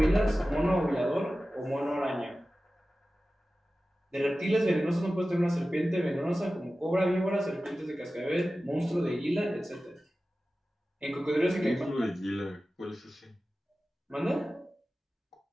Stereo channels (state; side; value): normal; both; correlation 0.95